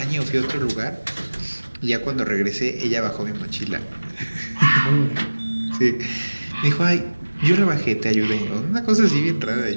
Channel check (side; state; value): both; inverted; correlation -1.00